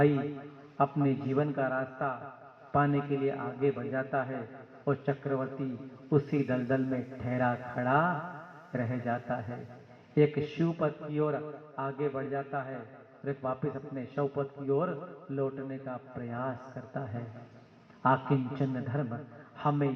अपने जीवन का रास्ता पाने के लिए आगे बढ़ जाता है और चक्रवर्ती उसी दलदल में ठहरा खड़ा रह जाता है। एक शिवपद की ओर आगे बढ़ जाता है और एक वापस अपने शवपद की ओर लौटने का प्रयास करता है। आकिंचन धर्म हमें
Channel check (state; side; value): identical; both; correlation 1.00